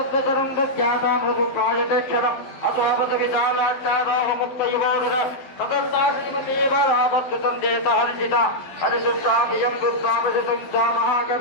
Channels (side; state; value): right; late; 12 ms